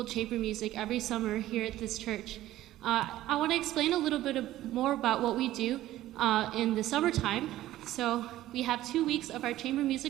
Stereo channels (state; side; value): quieter; left; 14.6 dB